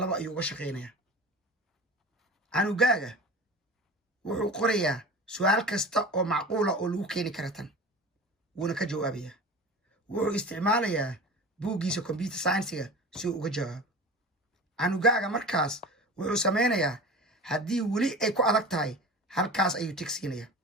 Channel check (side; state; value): both; normal; correlation 0.35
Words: ayuu uga shaqaynayaa. canugaaga wuxuu qorayaa su'aal kasta oo macquula oo lagu keeni kara tan, wuuna ka jawaabayaa. wuxuu isticmaalayaa buuggiisa computer science-ga si uu uga jawaabo. canugaaga markaas wuxuu samaynayaa haddii weli ay ku adag tahay halkaas ayuu tig siinayaa.